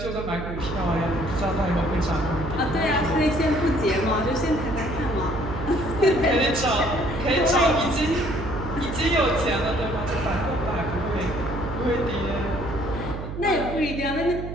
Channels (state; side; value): noise; right; hum, 7 dB below the sound